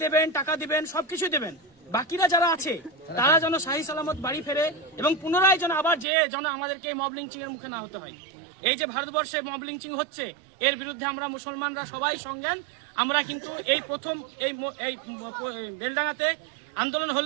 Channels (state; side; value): drops out; left; at 6.1 s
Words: দেবেন, টাকা দিবেন, সবকিছু দেবেন। বাকিরা যারা আছে তারা যেন শাহী সালামত বাড়ি ফেরে এবং পুনরায় যেন আবার যেন আমাদেরকে মব লিঞ্চিং এর মুখে না হতে হয়। এই যে ভারতবর্ষে মব লিঞ্চিং হচ্ছে, এর বিরুদ্ধে আমরা মুসলমানরা সবাই সংজ্ঞান। আমরা কিন্তু এই প্রথম এই বেলডাঙ্গাতে আন্দোলন